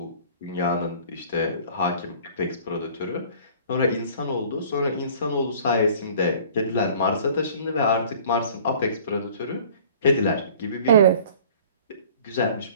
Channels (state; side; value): inverted; both; correlation -0.49